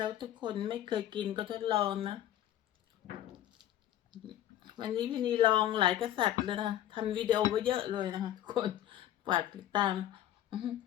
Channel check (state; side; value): quieter; right; 12.2 dB